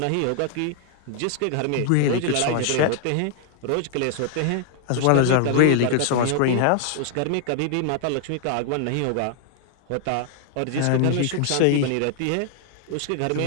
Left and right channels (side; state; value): both; different; correlation 0.00